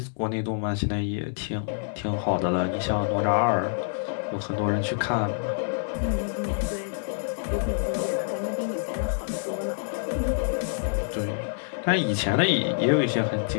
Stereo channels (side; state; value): right; silent; 59 dB below the other